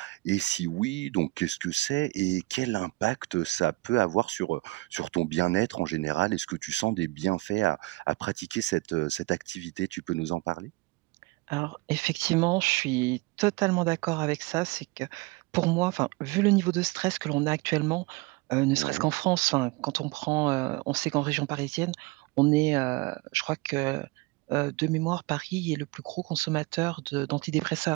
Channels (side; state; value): left; quieter; 22.2 dB